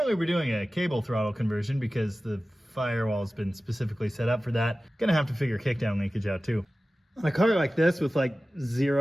we're doing a cable throttle conversion because the firewall's been specifically set up for that. Gonna have to figure kickdown linkage out too. On a car like this with like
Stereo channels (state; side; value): normal; both; correlation 0.96